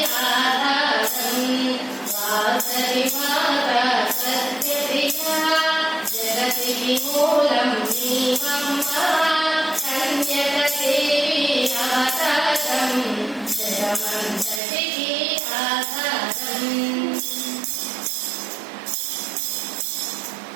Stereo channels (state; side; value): drops out; left; at 14.6 s